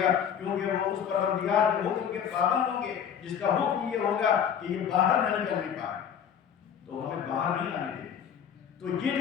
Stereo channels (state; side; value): quieter; right; 8.2 dB